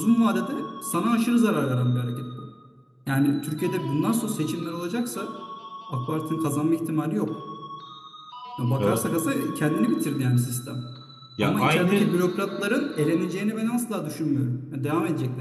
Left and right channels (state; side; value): identical; both; correlation 1.00